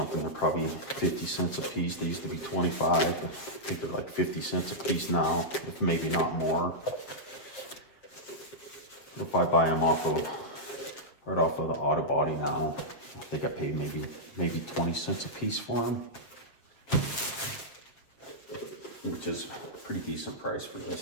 they're probably 50 cents a piece. They used to be 25. I think they're like 50 cents a piece now, if maybe not more. If I buy them right off of the auto body now, I think I pay maybe 20 cents a piece for them, which is a pretty decent price for these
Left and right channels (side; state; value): right; late; 7.5 ms